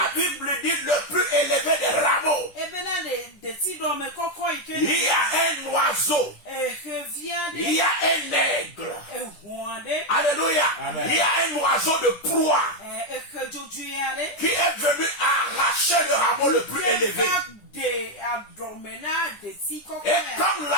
Bible dit le plus élevé des rameaux. Il y a un oiseau. Il y a un aigle. Alléluia. Amen. Il y a un oiseau de proie qui est venu arracher le rameau le plus élevé. Et comme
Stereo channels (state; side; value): late; right; 10 ms